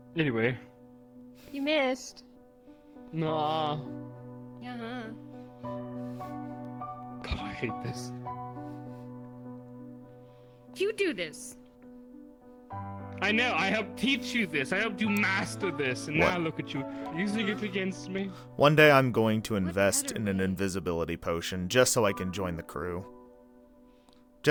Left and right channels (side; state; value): both; identical; correlation 1.00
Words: Anyway. You missed. Nah. Uh-huh. God, I hate this. You do this. I know, I helped teach you this. I helped you master this, and What? now look at you, using it against me. One day I'm going to invest in an invisibility potion just so I can join the crew.